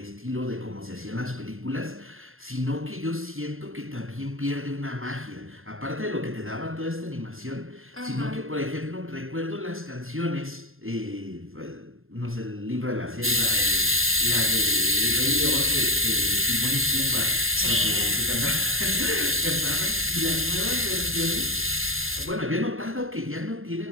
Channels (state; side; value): late; left; 0.60 ms